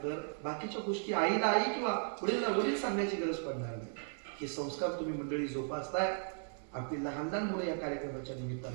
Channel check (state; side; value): silent; left; 54 dB below the other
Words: बाकीच्या गोष्टी आईला आई किंवा वडीलला वडील सांगण्याची गरज पडणार नाही. हे संस्कार तुम्ही मंडळी जोपासताय. आपली लहान लहान मुलं या कार्यक्रमाच्या